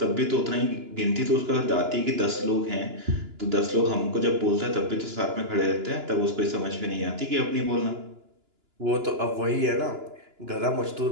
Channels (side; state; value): left; late; 2.9 ms